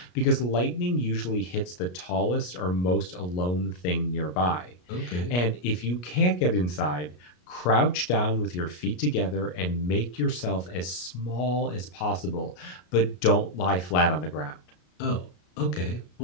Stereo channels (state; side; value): late; right; 33 ms